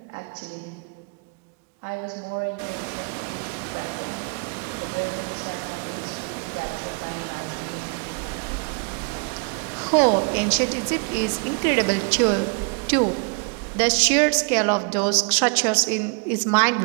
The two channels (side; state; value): left; quieter; 35.4 dB